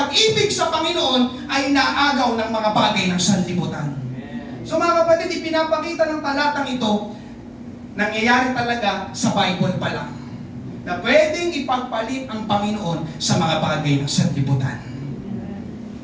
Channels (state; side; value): identical; both; correlation 1.00